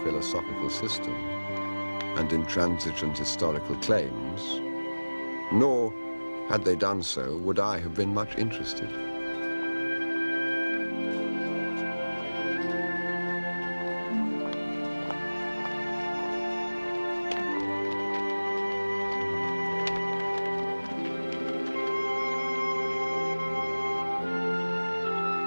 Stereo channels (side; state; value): both; inverted; correlation -1.00